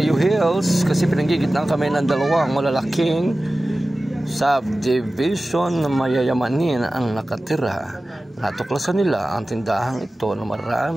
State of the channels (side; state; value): both; normal; correlation 0.96